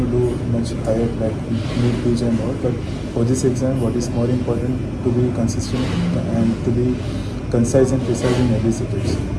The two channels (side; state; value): both; identical; correlation 1.00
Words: do much higher like need PG and all. But for this exam, what is more important to be consistent and to be concise and precise in every subject.